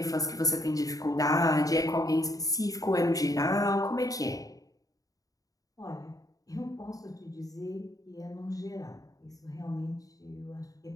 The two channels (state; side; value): late; right; 0.17 ms